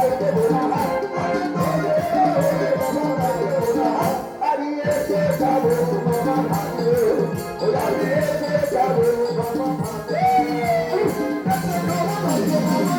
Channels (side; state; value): both; identical; correlation 1.00